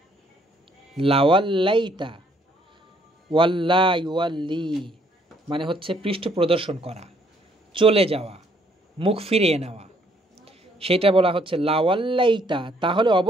লাওয়াল্লাইতা, ওয়াল্লা ইউয়াল্লি মানে হচ্ছে পৃষ্ঠ প্রদর্শন করা, চলে যাওয়া, মুখ ফিরিয়ে নেওয়া, সেটা বলা হচ্ছে লাওয়াল্লাইতা, তাহলে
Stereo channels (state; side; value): normal; both; correlation 0.66